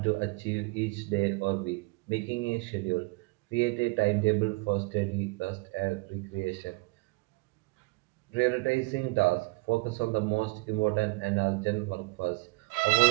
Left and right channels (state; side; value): quieter; left; 26.4 dB